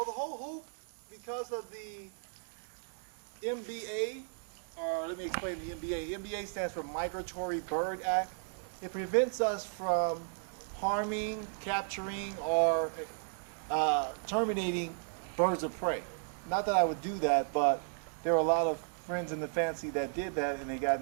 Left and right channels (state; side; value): silent; left; digital silence